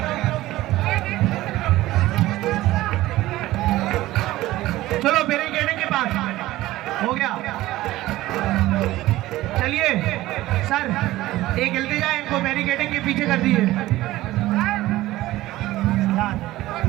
चलो बैरिकेडिंग के पास हो गया, चलिए सर एक जल्दी जाए, इनको बैरिकेडिंग के पीछे कर दीजिए।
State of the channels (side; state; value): left; quieter; 16.7 dB